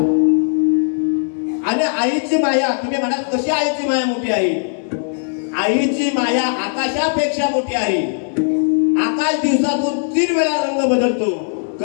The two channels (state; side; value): silent; right; 60 dB below the other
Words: आणि आईची माया, तुम्ही म्हणाल कशी आईची माया मोठी आहे, आईची माया आकाशापेक्षा मोठी आहे. आकाश दिवसातून 3 वेळा रंग बदलतो,